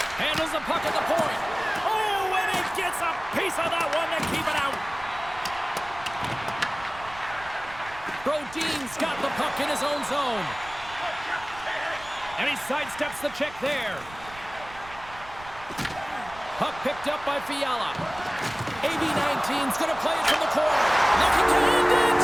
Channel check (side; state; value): right; noise; rumble, 19 dB below the sound